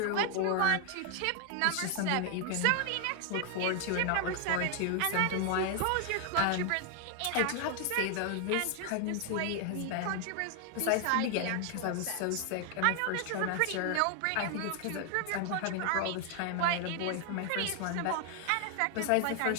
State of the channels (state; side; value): different; both; correlation 0.00